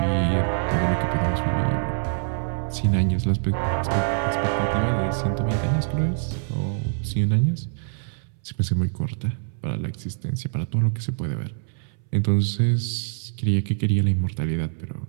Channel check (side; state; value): left; silent; 62 dB below the other